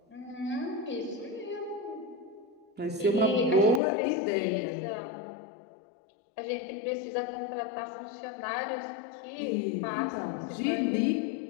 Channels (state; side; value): drops out; right; at 3.8 s